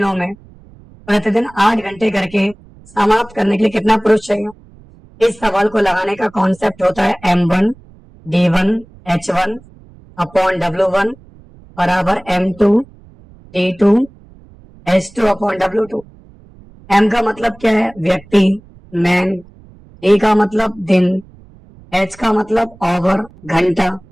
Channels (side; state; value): right; noise; rumble, 25 dB below the sound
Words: में प्रतिदिन 8 घंटे करके समाप्त करने के लिए कितना पुरुष चाहिए? इस सवाल को लगाने का कॉन्सेप्ट होता है M1 D1 H1 upon W1 बराबर M2 D2 H2 upon W2। M का मतलब क्या है? व्यक्ति, मैन। D का मतलब दिन, H का मतलब आवर, घंटा,